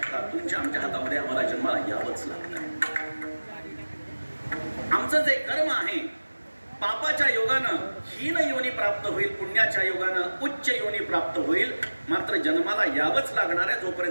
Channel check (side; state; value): both; inverted; correlation -1.00